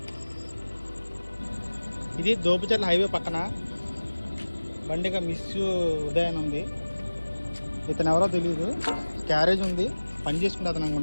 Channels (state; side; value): inverted; both; correlation -1.00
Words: ఇది దోపుచర్ల హైవే పక్కన బండిగా మిస్ ఉదయం ఉంది. ఇతను ఎవరో తెలియదు. క్యారేజ్ ఉంది, పని చేసుకుంటే అతను